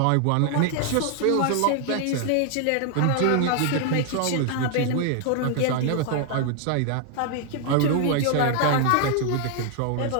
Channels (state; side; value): different; both; correlation 0.00